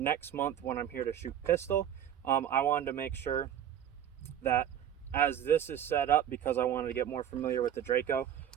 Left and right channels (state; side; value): quieter; left; 10.0 dB